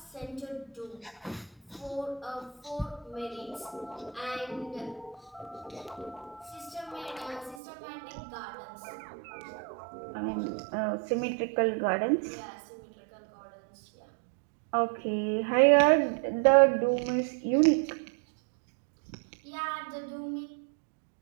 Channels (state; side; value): drops out; left; at 7.6 s